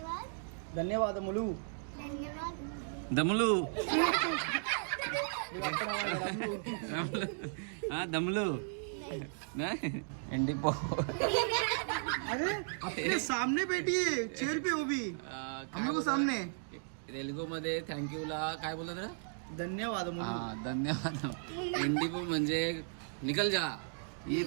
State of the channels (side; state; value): left; silent; digital silence